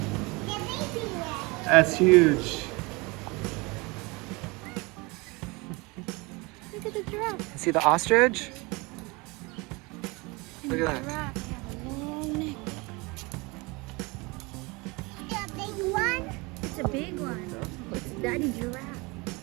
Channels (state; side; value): quieter; left; 26.0 dB